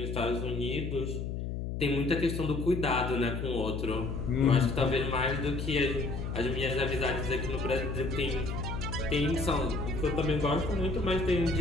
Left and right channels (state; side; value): noise; left; hum, 4 dB below the sound